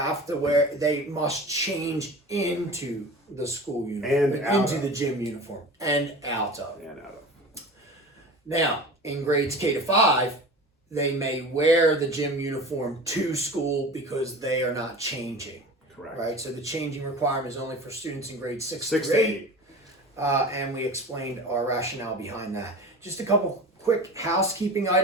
must change into the school uniform, And into the gym uniform, and out of. Now, in grades K to 5, they may wear the gym uniform to school because they are not changing. Correct. Right? So the changing requirement is only for students in grades 6 to to 8. And we explained our rationale behind that. Just a couple quick housekeeping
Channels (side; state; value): both; normal; correlation 0.36